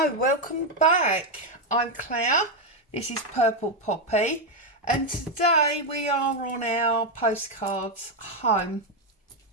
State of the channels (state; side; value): normal; both; correlation 0.04